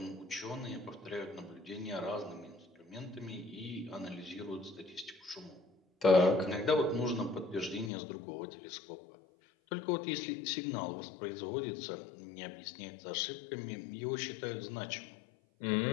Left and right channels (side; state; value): right; drops out; at 7.9 s